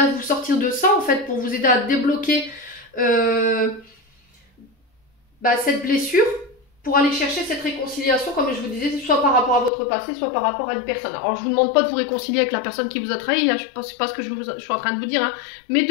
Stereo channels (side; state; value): right; drops out; at 9.7 s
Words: vous sortir de ça, en fait, pour vous aider à débloquer cette blessure, pour aller chercher cette réconciliation, comme je vous disais, soit par rapport à votre passé, soit par rapport à une personne. Alors, je vous demande pas de vous réconcilier avec la personne qui vous a trahi, hein, c'est pas ce que je suis en train de vous dire, hein, mais